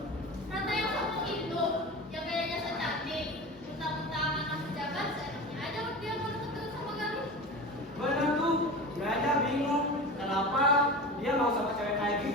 Ratna yang sombong itu, yang gayanya so cantik, mentang-mentang anak pejabat, seenaknya aja dia mau deket sama Galuh. Bener tuh, gue aja bingung kenapa dia mau sama cewek kayak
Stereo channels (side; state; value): both; normal; correlation 0.30